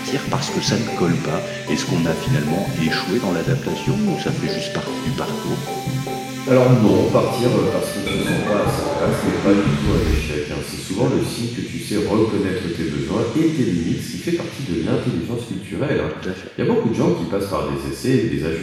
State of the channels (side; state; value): both; identical; correlation 1.00